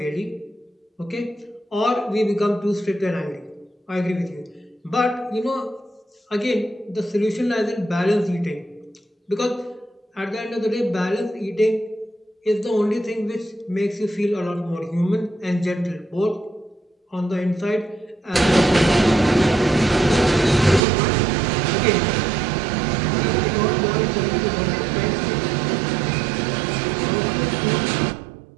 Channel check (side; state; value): left; drops out; at 20.8 s